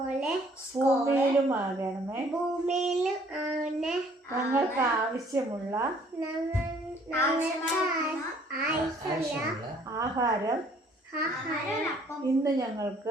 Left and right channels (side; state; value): both; normal; correlation 0.59